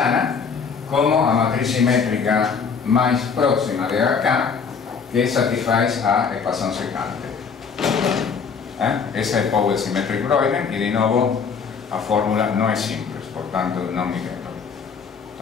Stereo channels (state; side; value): quieter; right; 5.9 dB